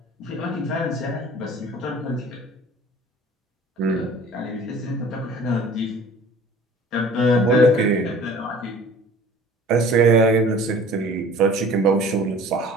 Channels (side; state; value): both; normal; correlation 0.47